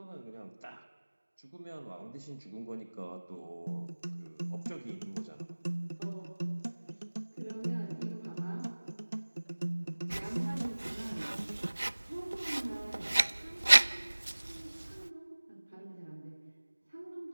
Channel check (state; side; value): inverted; both; correlation -1.00